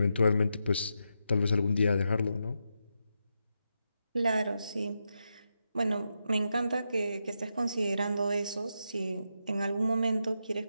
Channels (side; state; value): both; inverted; correlation -0.85